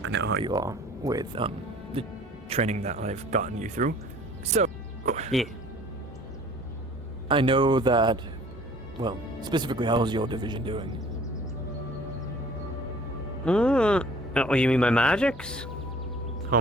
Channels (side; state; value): both; normal; correlation 0.51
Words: I know how you are with the training that I've gotten you through. So, yeah. I know that, specifically, how's your division doing? Oh, you mean my magics? How